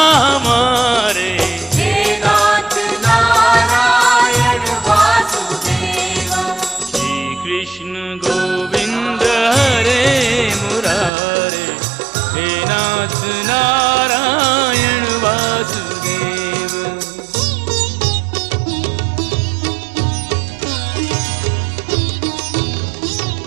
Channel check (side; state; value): left; drops out; at 11.1 s